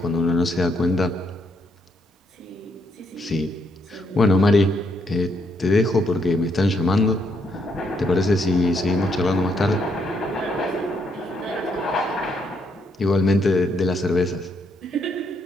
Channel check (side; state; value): both; normal; correlation 0.75